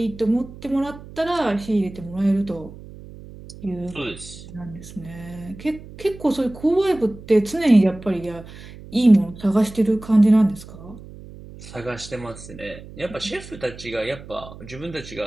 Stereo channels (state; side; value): noise; right; hum, 16 dB below the sound